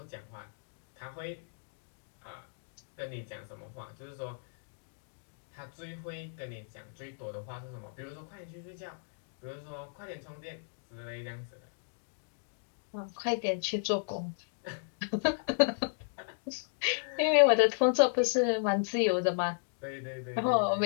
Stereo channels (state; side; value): silent; right; digital silence